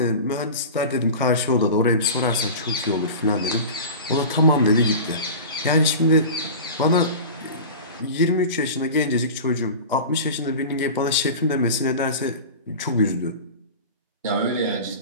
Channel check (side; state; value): both; inverted; correlation -0.33